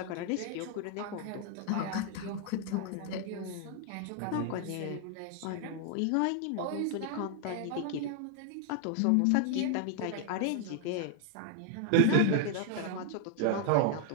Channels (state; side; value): different; both; correlation 0.00